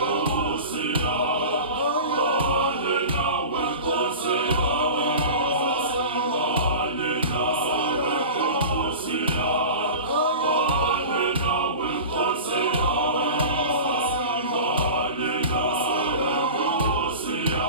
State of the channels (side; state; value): both; inverted; correlation -0.34